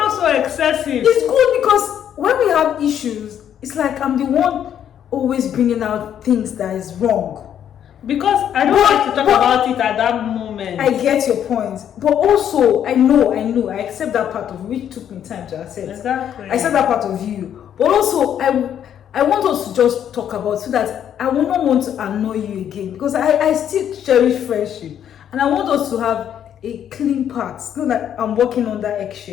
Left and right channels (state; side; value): quieter; right; 9.6 dB